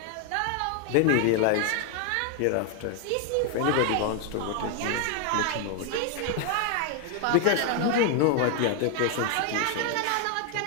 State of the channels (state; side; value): different; both; correlation 0.01